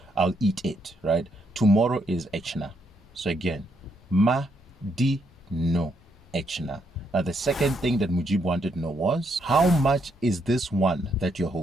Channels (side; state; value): both; normal; correlation 0.75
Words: I'll eat it, right? Tomorrow is ɛkyena. So again, Madino ɛkyena. Now the second thing that Mujeeb wanted to know was, how much is this one that you're